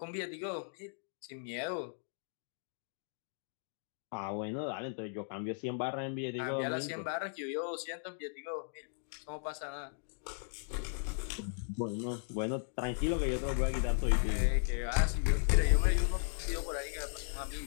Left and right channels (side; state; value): right; silent; digital silence